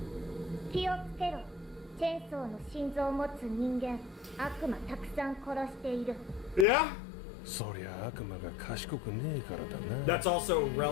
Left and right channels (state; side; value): drops out; right; at 6.7 s